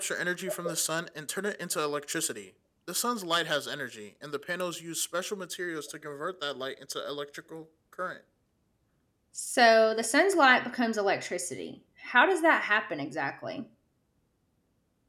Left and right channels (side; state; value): both; identical; correlation 1.00